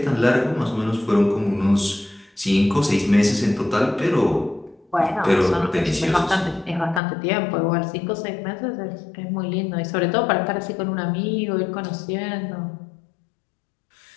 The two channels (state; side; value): drops out; right; at 7.0 s